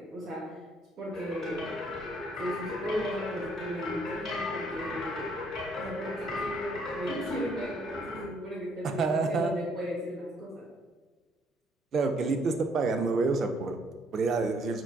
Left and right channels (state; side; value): normal; both; correlation 0.67